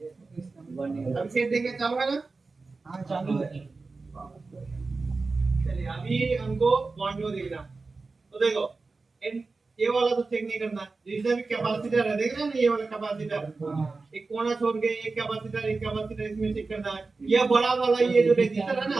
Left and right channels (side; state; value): left; quieter; 3.9 dB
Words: अब सेट देंगे चालू है ना हां चालू है चलिए अभी हमको पॉइंट वो देखना तो देखो ये वाला तो चेक नहीं करना जिसमें भी कैपेसिटर है देख रहे हैं ना ये वाला कैपेसिटर एक कोना छोड़ के एक कैपेसिटर इसमें चेक करना है ये बड़ा वाला ये जो रेजिस्टर है ना